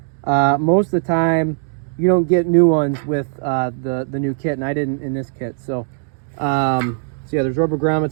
most of the time you don't get new ones with the new kit, and I didn't in this kit. So yeah, there's rubber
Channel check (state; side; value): silent; left; digital silence